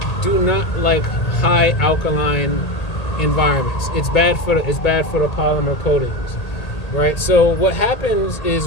do not like high alkaline environments. It's bad for the polymer coatings, right? So what happens is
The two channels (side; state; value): right; late; 1.8 ms